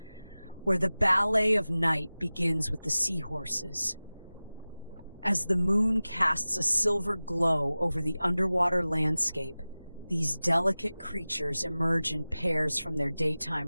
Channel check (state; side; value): inverted; both; correlation -0.98